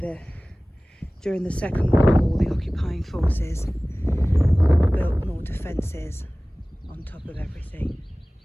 during the Second World War the occupying forces built more defences on top of everything.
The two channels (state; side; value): normal; both; correlation 0.98